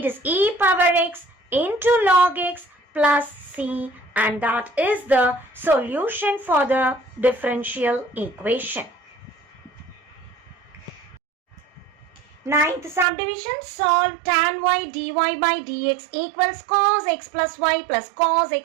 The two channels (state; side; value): drops out; left; at 13.1 s